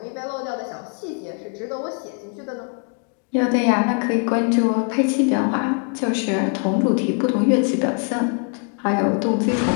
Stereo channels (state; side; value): quieter; right; 39.8 dB